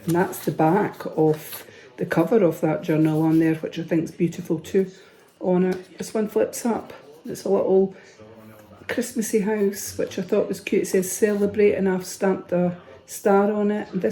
And that's the back of the cover of that journal on there, which I think is beautiful too on it. This one flips up. It's a little Christmassy house, which I thought was cute. It says celebrate and I've stamped a star on it. And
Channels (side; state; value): both; identical; correlation 1.00